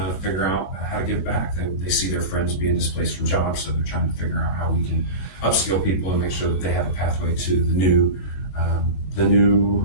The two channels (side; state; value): right; late; 21 ms